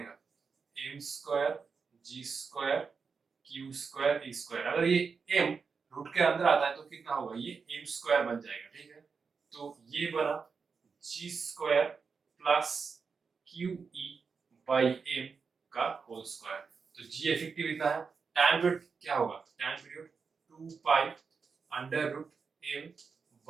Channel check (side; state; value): left; quieter; 5.3 dB